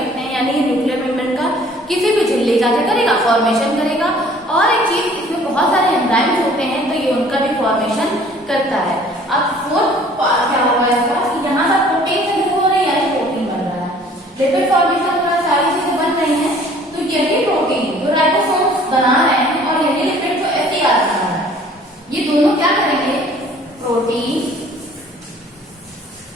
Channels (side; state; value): both; normal; correlation 0.54